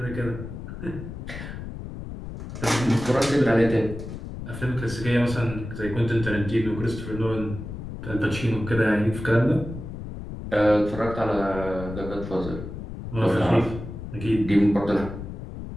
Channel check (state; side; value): noise; left; rumble, 9 dB below the sound